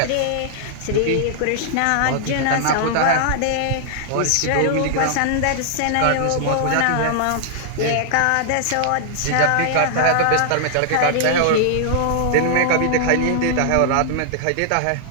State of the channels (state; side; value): different; both; correlation -0.01